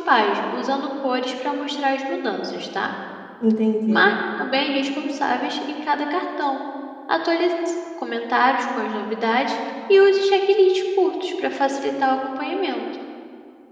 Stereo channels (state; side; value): identical; both; correlation 1.00